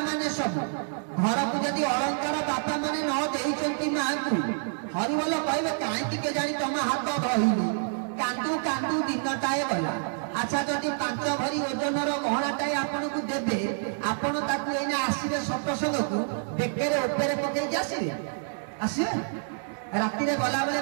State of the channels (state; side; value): silent; left; 60 dB below the other